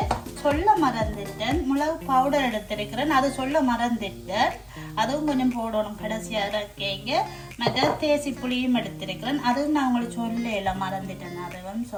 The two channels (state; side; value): identical; both; correlation 1.00